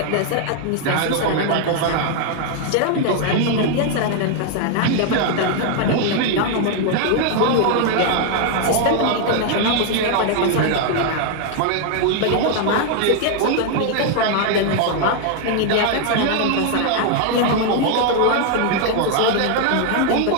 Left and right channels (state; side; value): different; both; correlation 0.00